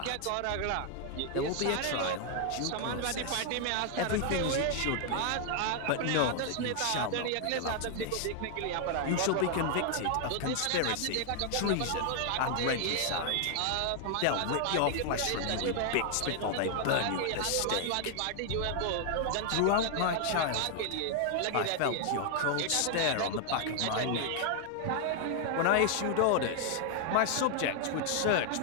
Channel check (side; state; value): both; different; correlation 0.00